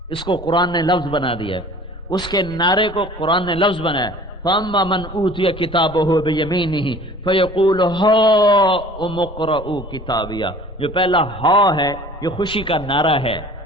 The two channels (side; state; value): both; normal; correlation 0.47